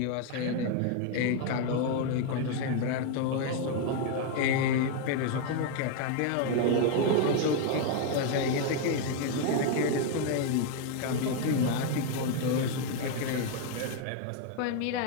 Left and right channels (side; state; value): both; different; correlation 0.01